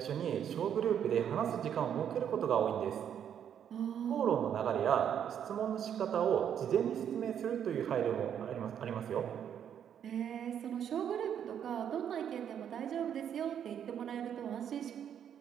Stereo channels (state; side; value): quieter; left; 9.0 dB